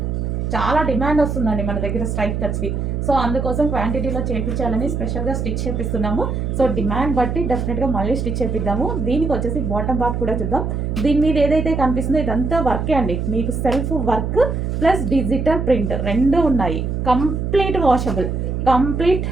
చాలా డిమాండ్ వస్తుందండి మన దగ్గర స్ట్రైట్ కట్స్కి. సో అందుకోసం క్వాంటిటీలో చేయించాలని స్పెషల్గా స్టిచ్ చేపిస్తున్నాము. సో డిమాండ్ బట్టి డెఫినెట్గా మళ్ళీ స్టిచ్ చేపిద్దాము. దీనికి వచ్చేసి బాటమ్ పార్ట్ కూడా చూద్దాం. దీని మీద ఏదైతే కనిపిస్తుందో ఇదంతా వర్కే అండి. మీకు self work plus digital print రెండు ఉన్నాయి. Complete washable.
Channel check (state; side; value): noise; right; hum, 2 dB below the sound